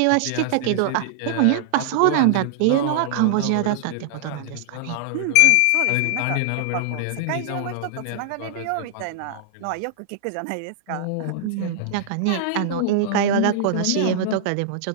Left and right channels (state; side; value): different; both; correlation -0.01